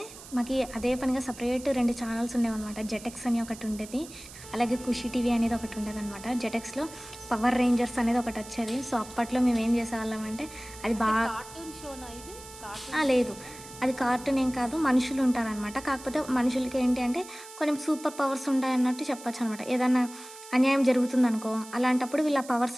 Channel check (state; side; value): noise; right; hiss, 16 dB below the sound